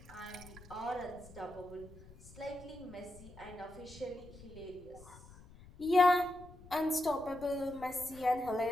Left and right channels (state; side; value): noise; left; rumble, 19 dB below the sound